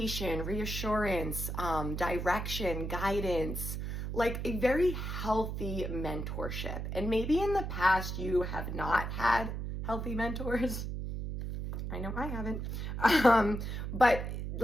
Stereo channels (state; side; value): noise; right; hum, 4 dB below the sound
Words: reassurance, direction, guidance, like a very healthy mentorship. And maybe in the past you have not had healthy mentors. I know I haven't. But